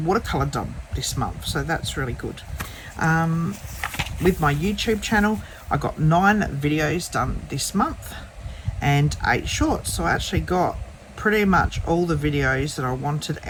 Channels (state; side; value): identical; both; correlation 1.00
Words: done this month, so that's really good. With my YouTube channel, I got 9 videos done this month and 8 shorts, so I actually got pretty much all the videos that I wanted